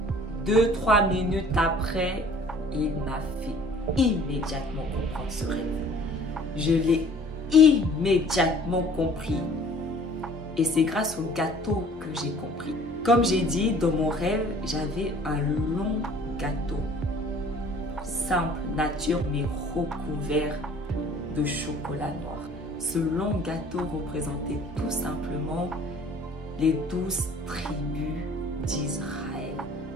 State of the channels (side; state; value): both; normal; correlation 0.52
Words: 2-3 minutes après, il m'a fait immédiatement comprendre ce rêve. Je l'ai immédiatement compris. Et c'est grâce au gâteau que j'ai compris. Comme j'ai dit, dans mon rêve, j'avais un long gâteau. Simple, nature, mais recouvert de chocolat noir. Ce long gâteau représentait tout simplement les 12 tribus d'Israël,